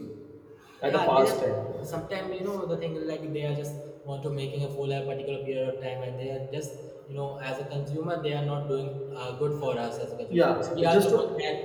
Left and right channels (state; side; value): identical; both; correlation 1.00